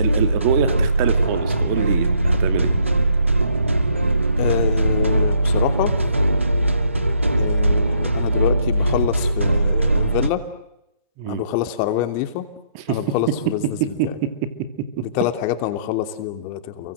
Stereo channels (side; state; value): both; inverted; correlation -0.66